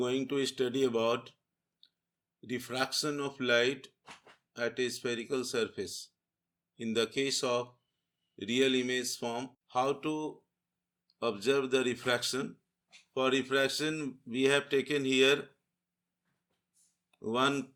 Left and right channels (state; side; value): identical; both; correlation 1.00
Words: to study about diffraction of light at a spherical surface. In the case of real image form, how to observe the refraction. For refraction, we have taken here one